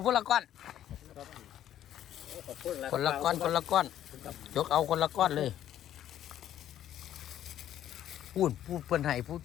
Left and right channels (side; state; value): right; quieter; 11.5 dB